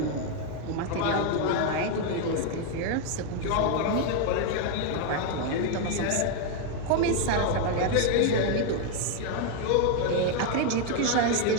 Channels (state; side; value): different; both; correlation 0.01